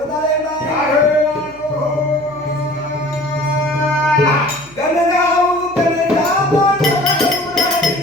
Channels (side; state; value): left; noise; hum, 25 dB below the sound